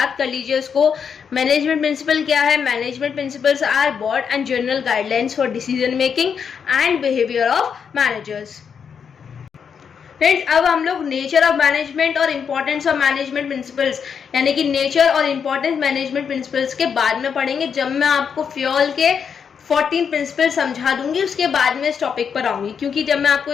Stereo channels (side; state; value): right; quieter; 6.9 dB